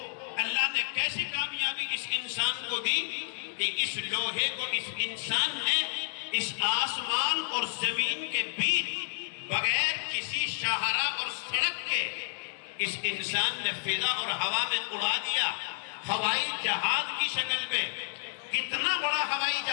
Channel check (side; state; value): right; silent; digital silence